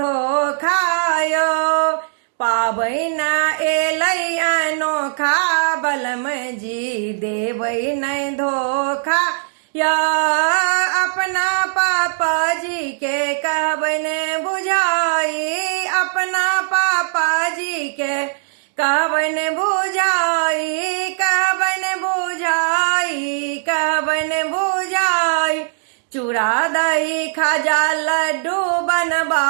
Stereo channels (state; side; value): silent; left; digital silence